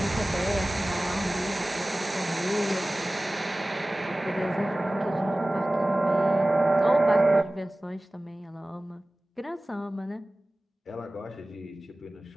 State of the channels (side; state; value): both; normal; correlation 0.97